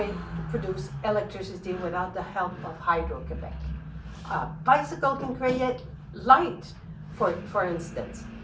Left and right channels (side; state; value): both; identical; correlation 1.00